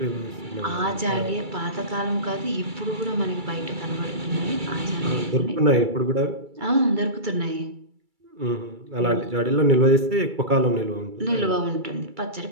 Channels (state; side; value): late; left; 2.3 ms